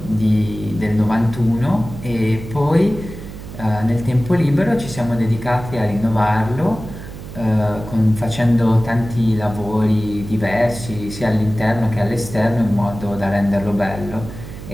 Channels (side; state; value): right; noise; hum, 12 dB below the sound